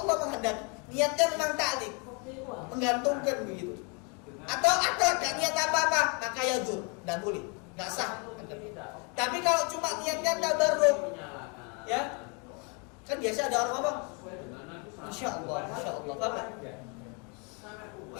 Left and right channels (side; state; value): right; quieter; 34.4 dB